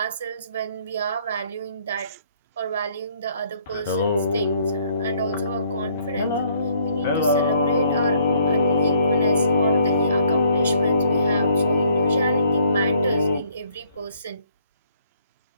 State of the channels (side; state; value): both; inverted; correlation -0.65